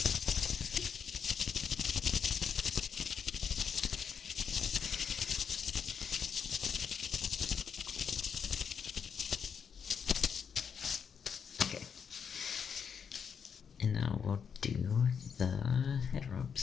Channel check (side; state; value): right; quieter; 6.9 dB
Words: Okay. And now we'll do the head